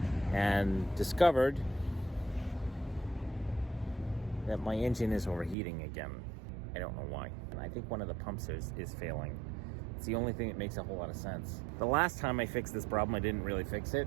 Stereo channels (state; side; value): drops out; left; at 5.6 s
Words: and discovered that my engine is overheating again. I don't know why. And I think one of the pumps is failing. It's the only thing that makes a whole lot of sense. The last time I fixed this problem, I didn't really fix